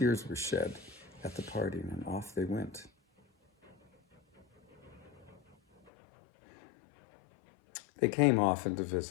were shed at the parting, and off they went. They came often to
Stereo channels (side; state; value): right; drops out; at 5.9 s